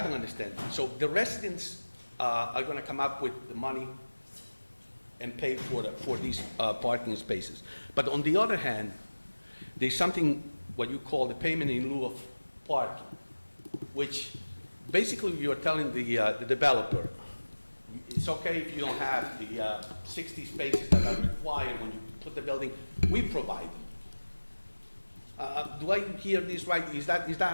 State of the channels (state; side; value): inverted; both; correlation -1.00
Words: don't understand, so the residents are going to come up with the money and pay for these parking spaces. But on the other hand, there's something what you call the payment in lieu of parking, which basically you're telling the developer, it's okay if you don't have the 60 spaces that are required when you put the building, we provide them. Do I hear this right? Is that